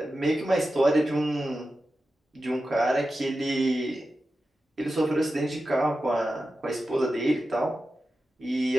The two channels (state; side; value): normal; both; correlation 0.92